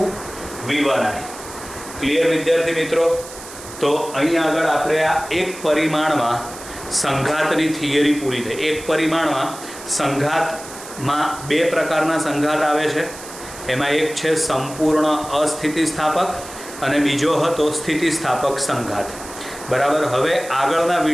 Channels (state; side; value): noise; right; hiss, 14 dB below the sound